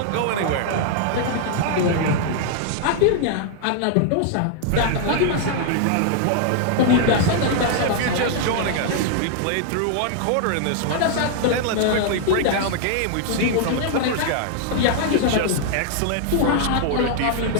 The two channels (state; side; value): different; both; correlation 0.00